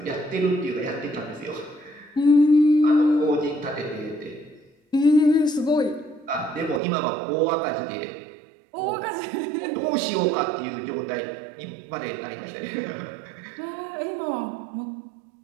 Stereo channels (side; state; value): left; drops out; at 6.8 s